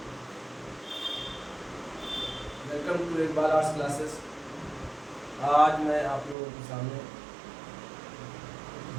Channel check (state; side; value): drops out; left; at 6.4 s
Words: welcome to Iqbal arts classes. आज मैं आप लोगों के सामने